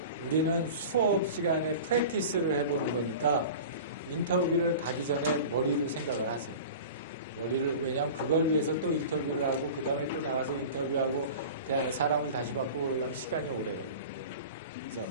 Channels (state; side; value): inverted; both; correlation -0.36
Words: 우리는 수업 시간에 프랙티스를 해보는 거니까 인터뷰를 가기 전에 머리로 생각을 하세요. 왜냐하면 그걸 위해서 또 인터뷰를 하고 그 다음에 또 나가서 인터뷰하고 사람을 다시 바꾸고 그러려면 시간이 오래 걸려요. 그래서